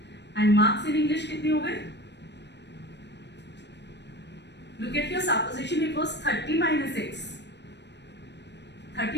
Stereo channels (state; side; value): late; right; 0.50 ms